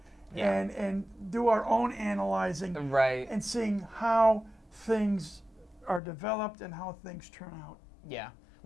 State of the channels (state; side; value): drops out; right; at 6.0 s